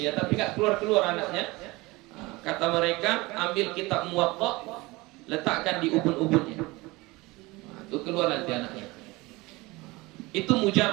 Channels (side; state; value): left; quieter; 22.4 dB